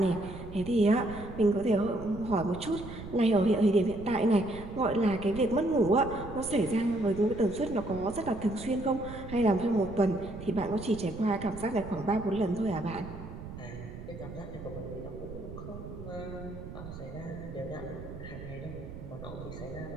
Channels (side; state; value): right; noise; rumble, 12 dB below the sound